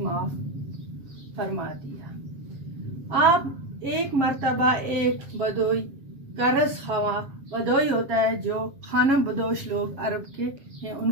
फरमा दिया। आप एक मर्तबा एक बदोई करस खवा, बदोई होता है जो खाना बदोश लोग अरब के हैं,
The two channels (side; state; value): left; late; 7.3 ms